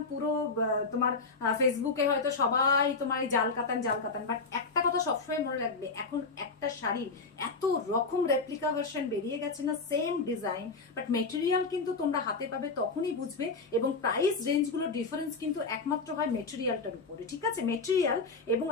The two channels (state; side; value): quieter; right; 4.1 dB